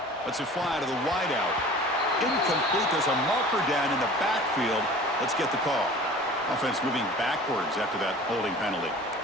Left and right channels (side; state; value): both; normal; correlation 0.43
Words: Let's it fly to the wideout. Incomplete. There's a marker down in the backfield. Let's get the call. Offense moving backwards after that holding penalty.